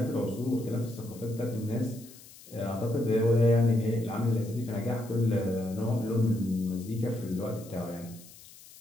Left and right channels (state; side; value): noise; left; hiss, 20 dB below the sound